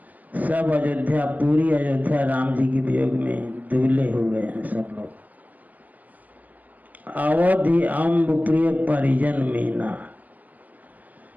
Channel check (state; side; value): late; left; 0.080 ms